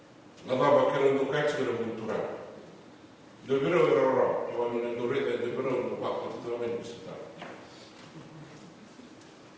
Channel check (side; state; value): both; identical; correlation 1.00